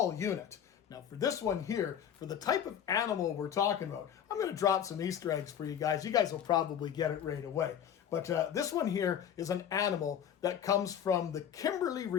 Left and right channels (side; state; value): right; quieter; 9.2 dB